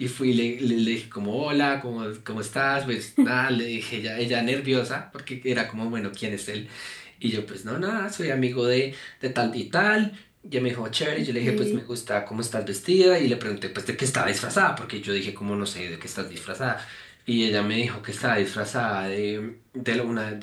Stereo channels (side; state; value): both; identical; correlation 1.00